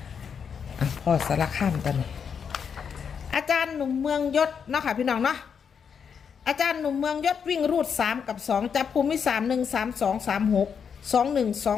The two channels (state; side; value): quieter; right; 6.9 dB